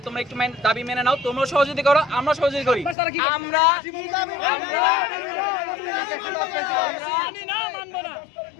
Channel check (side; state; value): right; drops out; at 3.0 s